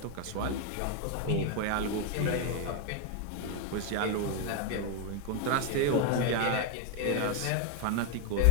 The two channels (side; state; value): both; different; correlation 0.01